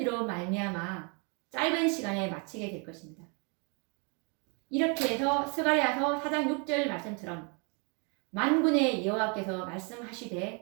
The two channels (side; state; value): left; quieter; 34.2 dB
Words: 말미암아 짧은 시간에 마치게 될 것입니다. 이렇게 해서 스가랴서 4장 6절 말씀처럼 만군의 여호와께서